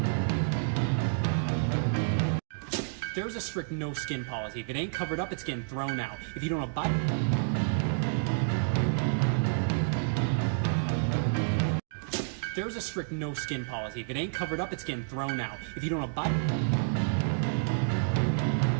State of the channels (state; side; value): silent; left; digital silence